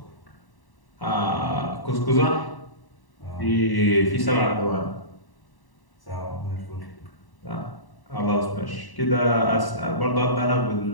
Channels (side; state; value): right; late; 1.1 ms